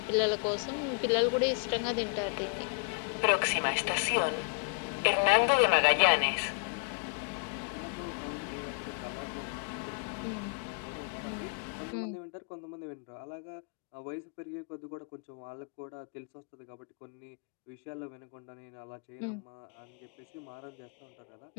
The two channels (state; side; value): quieter; right; 39.1 dB